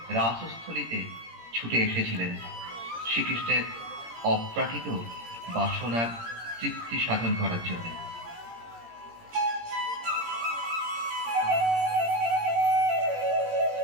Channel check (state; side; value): late; left; 17 ms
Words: রাসস্থলীতে ছুটে এসেছিলেন শ্রীকৃষ্ণের অপ্রাকৃত বাসনার তৃপ্তি সাধন করার জন্য।